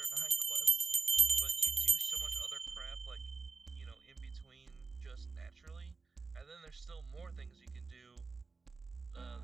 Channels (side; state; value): left; quieter; 4.2 dB